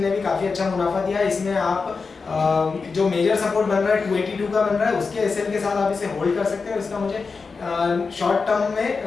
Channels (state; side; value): quieter; right; 4.7 dB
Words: ने भी काफ़ी अच्छा मुनाफा दिया। इसमें आप जो मेजर सपोर्ट बन रहा है 282 का बन रहा है, उसके एसएल के साथ आप इसे होल्ड कर सकते हैं। इसका मुझे शॉर्ट टर्म में